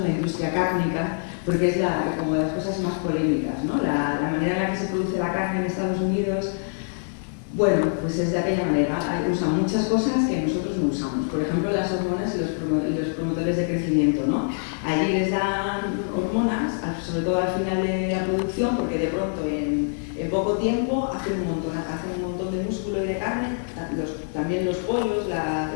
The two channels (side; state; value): right; silent; digital silence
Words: la industria cárnica, porque es como de las cosas más polémicas, ¿no? La manera en la que se produce la carne en Estados Unidos, pues es de aquella manera. Usan muchas cosas que nosotros no usamos, por ejemplo las hormonas y los promotores de crecimiento, ¿no? Allí les dan hormonas, sobre todo al final de la producción, porque de pronto en poco tiempo hacen un montón de músculo y de carne, también los pollos,